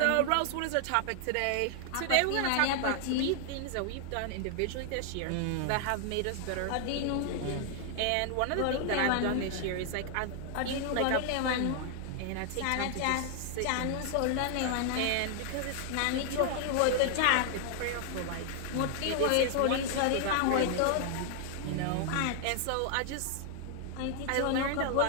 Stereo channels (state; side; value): different; both; correlation 0.00